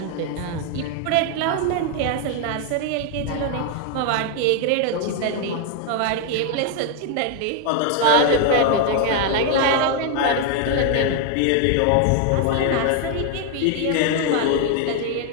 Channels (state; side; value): different; both; correlation 0.00